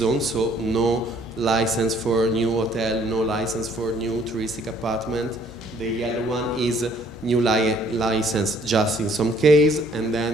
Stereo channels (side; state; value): both; normal; correlation 0.61